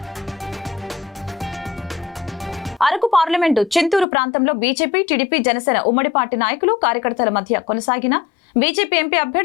అరకు పార్లమెంటు చింతూరు ప్రాంతంలో బీజేపీ, టీడీపీ, జనసేన ఉమ్మడి పార్టీ నాయకులు, కార్యకర్తల మధ్య కొనసాగిన బీజేపీ ఎంపీ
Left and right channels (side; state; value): right; drops out; at 4.0 s